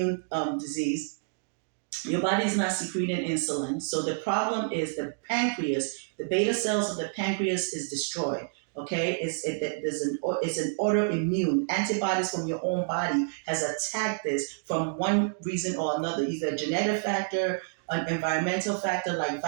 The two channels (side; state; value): left; silent; digital silence